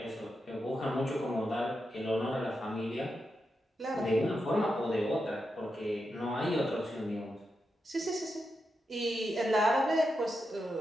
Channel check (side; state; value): both; normal; correlation 0.87